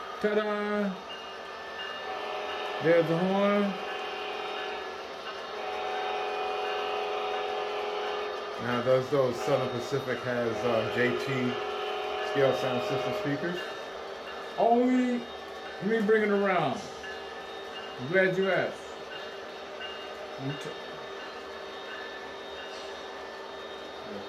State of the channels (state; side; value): identical; both; correlation 1.00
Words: Ta-da! There's the horn. Now, does those Southern Pacific has JT scale sound system speakers? Only, let me bring it around. I'm glad you asked.